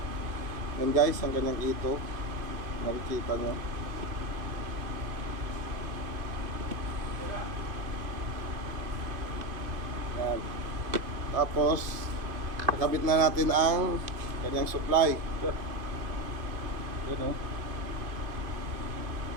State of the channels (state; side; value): late; left; 2.5 ms